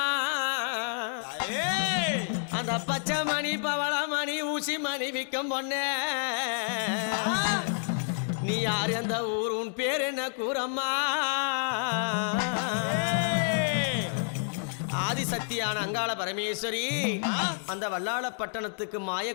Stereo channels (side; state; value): right; silent; digital silence